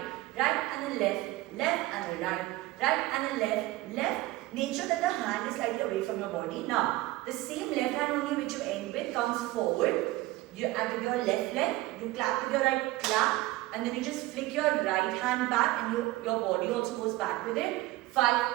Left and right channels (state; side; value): quieter; left; 18.5 dB